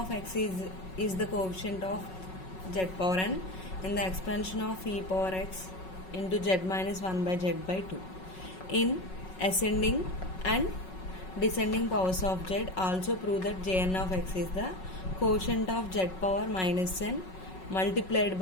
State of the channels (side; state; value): right; late; 5.4 ms